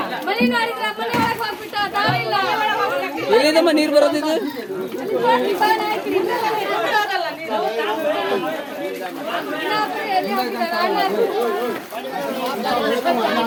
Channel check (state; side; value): identical; both; correlation 1.00